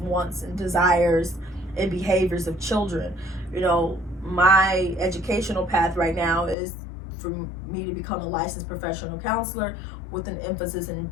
and desires and behaviors of children. You know, my educational path right now is for me to become a licensed professional counselor with an emphasis in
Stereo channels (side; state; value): right; drops out; at 6.6 s